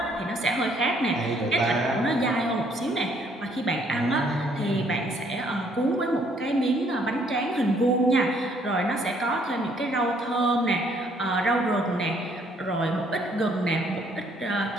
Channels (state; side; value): normal; both; correlation 0.65